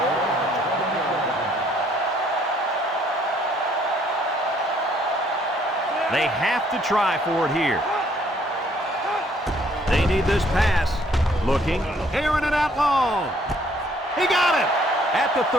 They have to try for it here. They need this pass. Looking, airing it out long. He got it! At the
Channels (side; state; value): both; normal; correlation 0.64